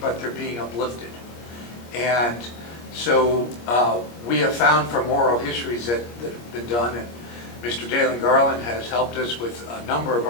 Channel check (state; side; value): late; right; 25 ms